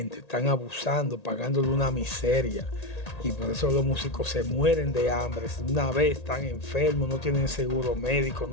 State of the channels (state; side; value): late; right; 1.8 ms